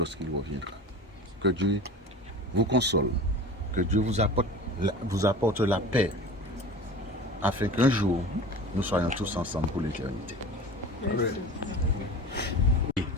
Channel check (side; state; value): both; normal; correlation 0.36